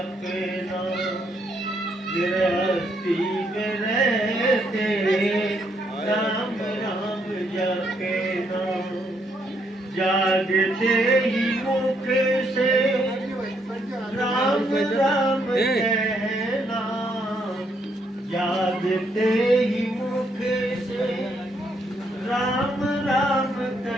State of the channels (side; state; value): both; normal; correlation 0.73